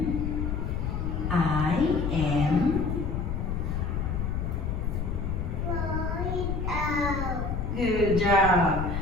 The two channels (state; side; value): noise; left; rumble, 2 dB below the sound